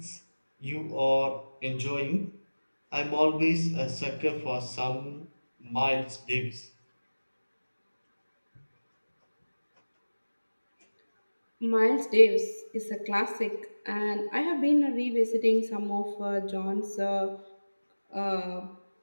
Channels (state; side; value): inverted; both; correlation -1.00